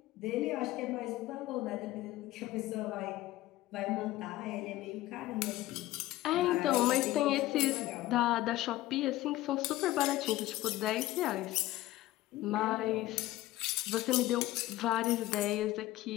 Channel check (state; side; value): quieter; right; 16.3 dB